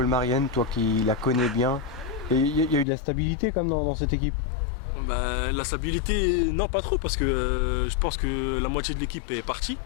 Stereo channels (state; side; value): drops out; right; at 2.9 s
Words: toi qui la connais bien? Il y a eu de la stabilité quand même dans cette équipe? Bah, la stabilité, non pas trop, parce que je pense que la moitié de l'équipe est partie.